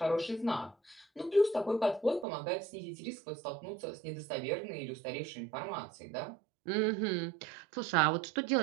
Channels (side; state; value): left; drops out; at 2.2 s